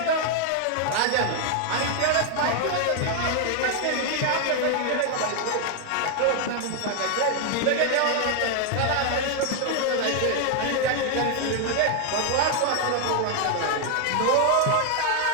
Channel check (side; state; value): both; different; correlation 0.00